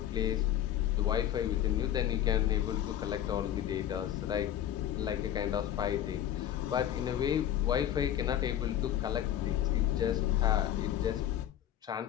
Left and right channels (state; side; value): quieter; right; 11.3 dB